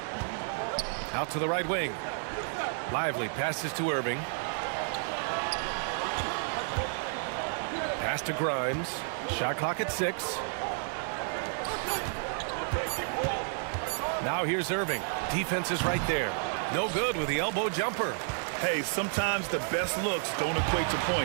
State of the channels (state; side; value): silent; left; 57 dB below the other